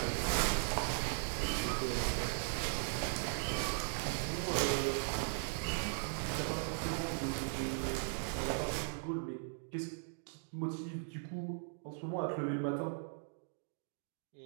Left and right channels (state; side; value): silent; left; digital silence